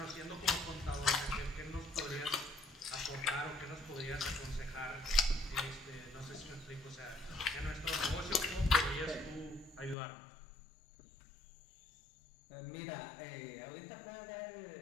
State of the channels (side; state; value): right; drops out; at 10.0 s